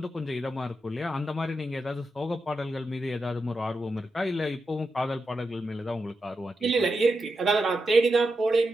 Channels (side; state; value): both; normal; correlation 0.87